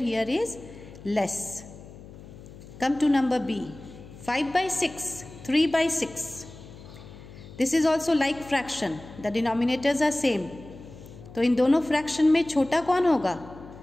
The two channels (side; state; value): left; noise; hum, 17 dB below the sound